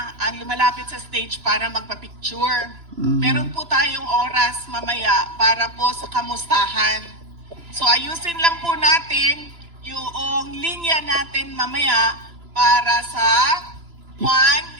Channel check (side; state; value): left; late; 2.9 ms